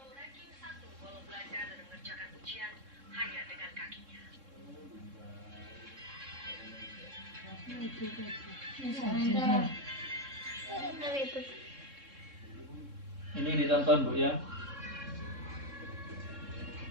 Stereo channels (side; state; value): left; late; 3.7 ms